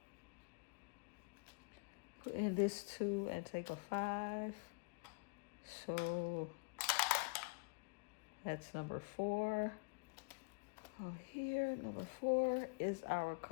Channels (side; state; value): right; quieter; 30.5 dB